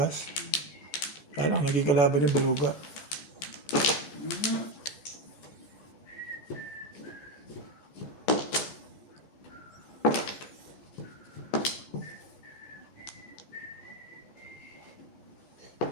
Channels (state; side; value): late; right; 14 ms